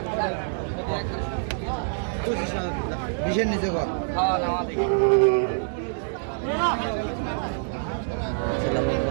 বিশের নিচে কর।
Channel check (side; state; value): left; silent; digital silence